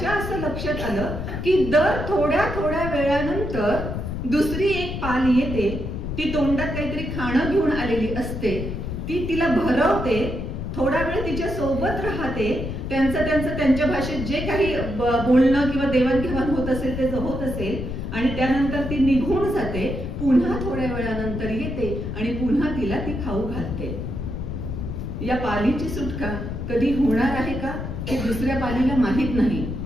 असं लक्षात आलं की दर थोड्या थोड्या वेळानंतर दुसरी एक पाल येते, ती तोंडात काहीतरी खाणं घेऊन आलेली असते, ती तिला भरवते, थोडा वेळ तिच्या सोबत राहते, त्यांच्या भाषेत जे काही बोलणं किंवा देवाणघेवाण होत असेल ते होत असेल आणि त्यानंतर ती निघून जाते. पुन्हा थोड्या वेळानंतर येते आणि पुन्हा तिला ती खाऊ घालते. या पालीची सुटका कधी होणार आहे का हे दुसऱ्या पालीला माहित नाही.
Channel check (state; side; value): noise; left; rumble, 5 dB below the sound